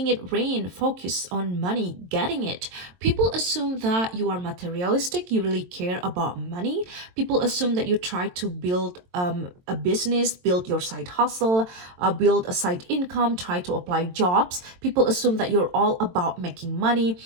it rain, focus on money, getting it. People assume that you are materialistic. You really care about money. People assume that you try to build a business, build your side hustle, build a side income, try to apply jobs. People assume that you're all about making money.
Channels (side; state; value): left; late; 22 ms